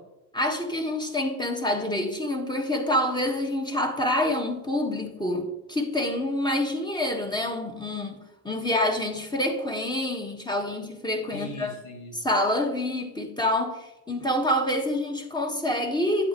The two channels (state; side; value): normal; both; correlation 0.28